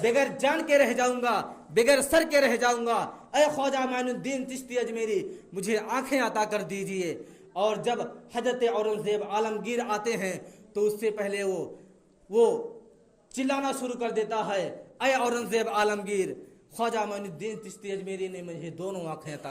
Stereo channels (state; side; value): identical; both; correlation 1.00